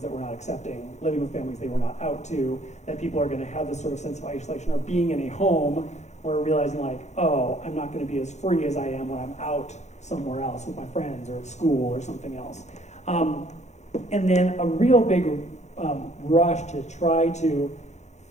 that were not accepting, living with families they were not out to, that people are going to have this sort of sense of isolation, or being in a home where realizing oh, I'm not going to be as free as I am when I'm out somewhere else with my friends or at school or something else. And then a real big rush to try to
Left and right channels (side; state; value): right; late; 0.33 ms